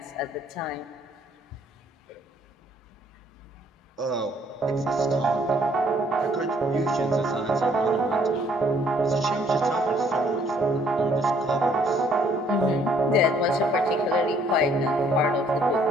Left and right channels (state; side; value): normal; both; correlation 0.64